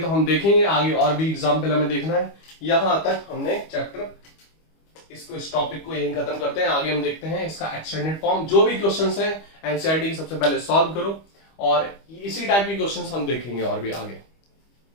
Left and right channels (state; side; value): late; right; 25 ms